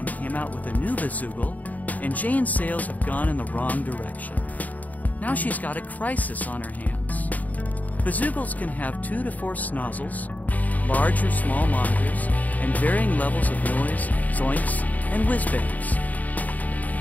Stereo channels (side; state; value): right; late; 0.076 ms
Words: came out with a new bazoogle, and Jane's sales have gone in the wrong direction. Now she's got a crisis on her hands. Bazoogles can have 2 to 4 snozzles, large or small monitors, and varying levels of noise, zoinks, and whiz-bangs.